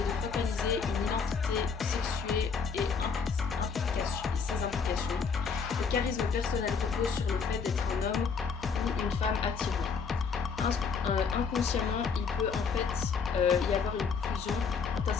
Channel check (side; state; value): right; quieter; 5.7 dB